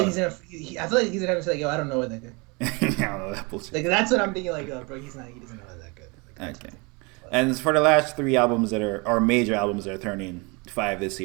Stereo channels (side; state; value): left; quieter; 28.8 dB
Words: he's gonna. I feel like he's gonna say like, "Yo, I don't know what that good." I don't know that bullshit. Like that's what I'm thinking. Like, bro, he doesn't know that good. Like, okay. And for the last 3 albums that are major albums that are turning 5 this